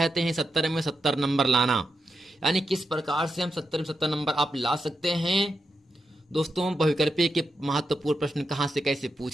हैं 70 में 70 नंबर लाना, यानी किस प्रकार से हम 70 में 70 नंबर आप ला सकते हैं। दोस्तों बहुविकल्पीय के महत्वपूर्ण प्रश्न कहाँ से कैसे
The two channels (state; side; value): normal; both; correlation 0.86